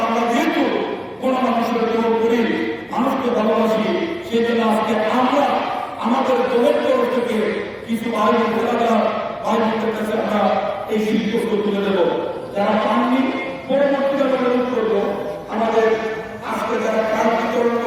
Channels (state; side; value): identical; both; correlation 1.00